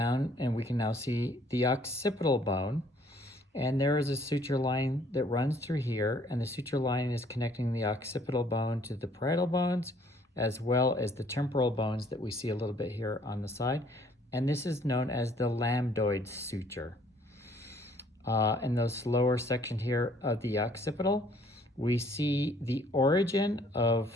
and we can now see the occipital bone. And there is a suture line that runs through here, and the suture line is connecting the occipital bone to the parietal bones, as well as the temporal bones that we see a little bit here on the side. And this is known as the lambdoid suture. In this lower section here of the occipital, we see the origin of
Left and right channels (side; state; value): both; normal; correlation 0.61